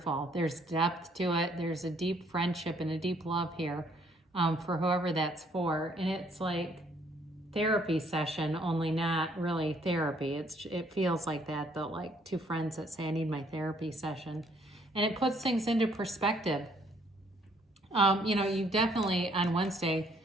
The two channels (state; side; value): normal; both; correlation 0.65